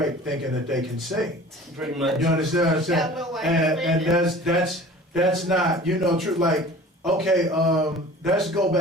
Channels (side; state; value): both; normal; correlation 0.44